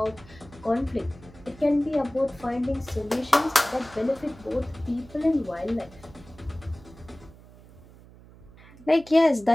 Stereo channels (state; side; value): noise; right; hum, 22 dB below the sound